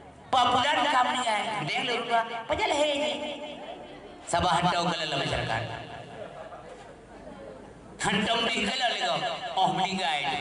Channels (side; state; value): both; identical; correlation 1.00